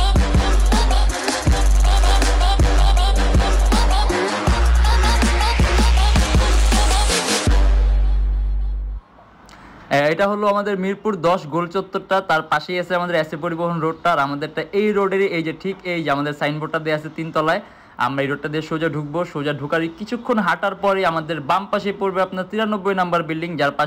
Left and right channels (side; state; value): both; identical; correlation 1.00